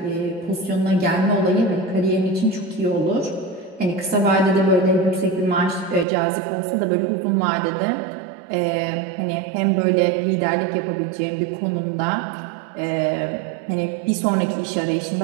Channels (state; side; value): drops out; left; at 6.1 s